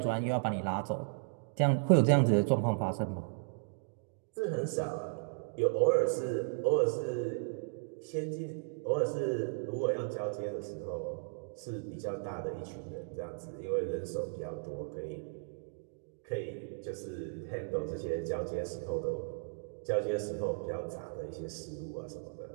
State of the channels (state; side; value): silent; left; digital silence